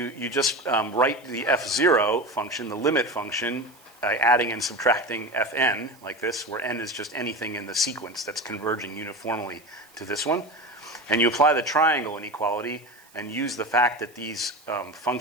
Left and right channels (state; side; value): noise; right; hiss, 27 dB below the sound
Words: just write the f0 function, the limit function, adding and subtracting Fn, like this, where n is just anything in the sequence that's converging uniformly to this one. And you apply the triangle inequality and use the fact that these